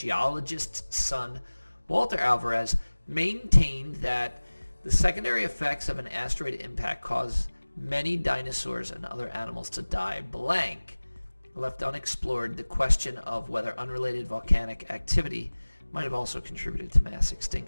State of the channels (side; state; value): both; inverted; correlation -1.00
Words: son, Walter Alvarez, maintained that the secondary effects of an asteroid impact cause many dinosaurs and other animals to die blank. Left unexplored the question of whether unrelated volcanic activity might have also contributed to mass